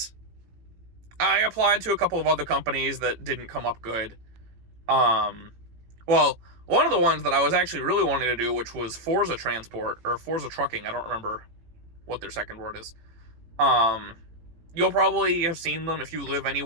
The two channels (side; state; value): left; late; 18 ms